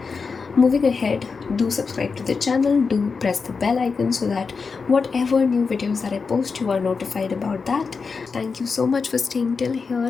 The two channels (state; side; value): quieter; right; 5.0 dB